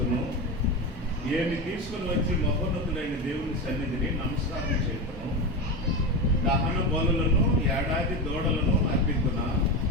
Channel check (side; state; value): both; normal; correlation 0.18